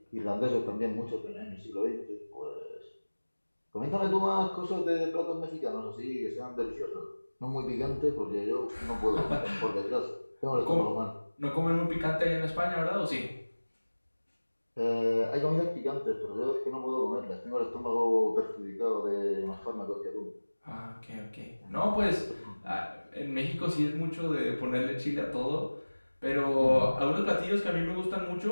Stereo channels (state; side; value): inverted; both; correlation -1.00